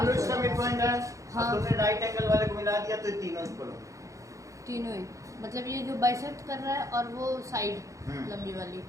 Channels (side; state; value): left; late; 0.15 ms